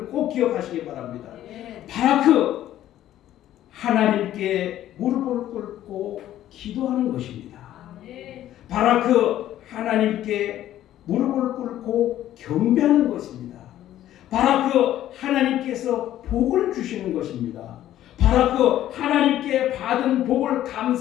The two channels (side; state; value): right; quieter; 12.7 dB